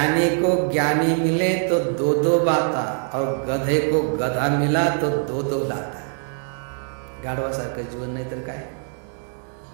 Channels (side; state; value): left; silent; 60 dB below the other